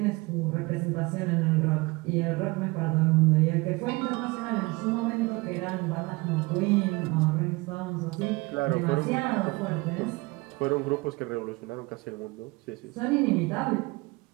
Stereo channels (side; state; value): left; quieter; 24.1 dB